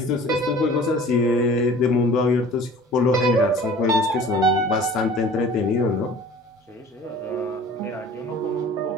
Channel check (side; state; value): both; normal; correlation 0.45